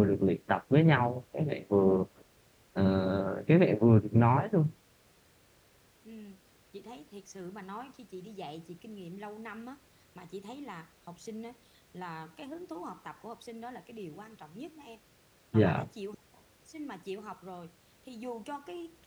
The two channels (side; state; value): both; identical; correlation 1.00